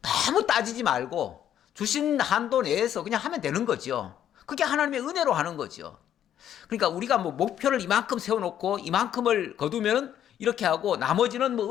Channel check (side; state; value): right; quieter; 10.4 dB